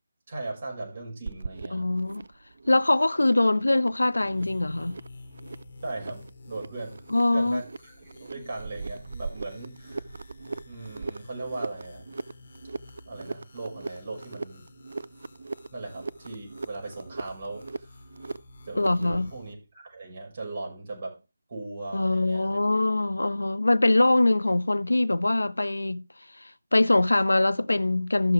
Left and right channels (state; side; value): inverted; both; correlation -0.98